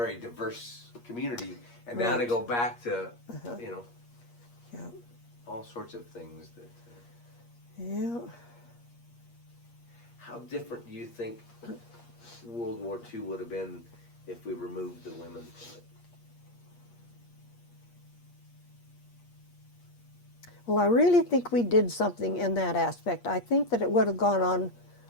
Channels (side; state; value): right; late; 8.5 ms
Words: diverse community, and now to go back to, you know, all sorts of things that... Yeah. How different do you think World War II would have been if we removed the women from it? Well, I really think we did something in that aspect. I think that it would have gone on